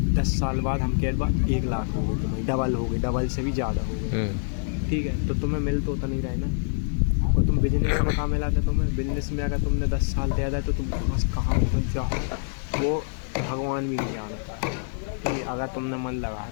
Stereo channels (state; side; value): silent; right; digital silence